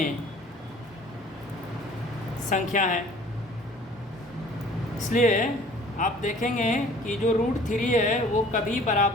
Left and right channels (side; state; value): both; normal; correlation 0.51